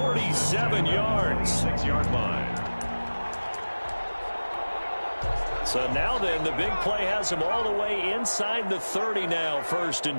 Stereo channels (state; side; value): inverted; both; correlation -1.00